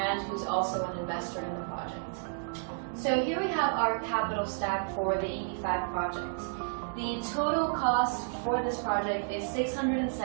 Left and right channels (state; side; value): silent; left; digital silence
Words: who's also an investor in the project. So here we have our capital stack for the EB-5 project. The total cost for this project is